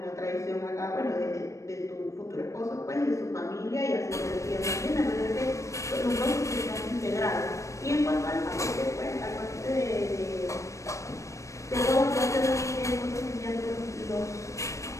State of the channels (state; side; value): late; right; 0.15 ms